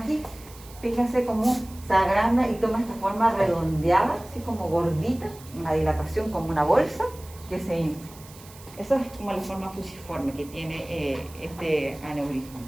Fíjense cómo se agranda y toma esta forma redondeada, así como gordita, una dilatación como una bolsa que se infla. Eso es como la forma fusiforme que tiene este aneurisma.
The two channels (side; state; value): right; noise; hiss, 20 dB below the sound